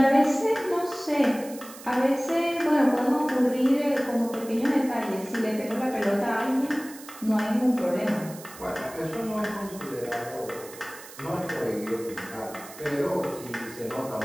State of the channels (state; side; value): noise; right; hiss, 17 dB below the sound